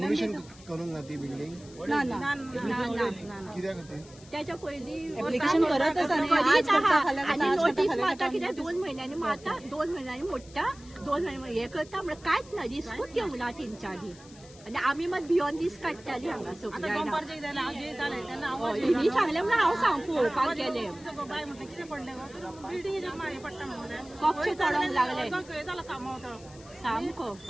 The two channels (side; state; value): left; noise; hiss, 22 dB below the sound